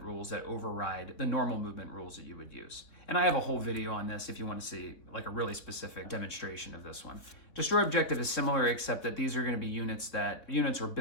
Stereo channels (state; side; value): late; right; 3.5 ms